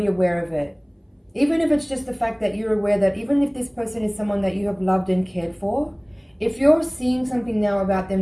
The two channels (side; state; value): both; identical; correlation 1.00